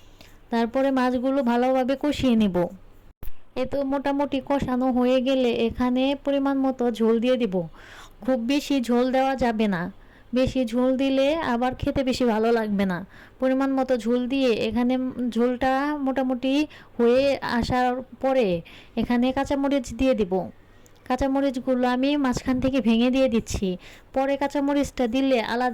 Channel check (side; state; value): both; identical; correlation 1.00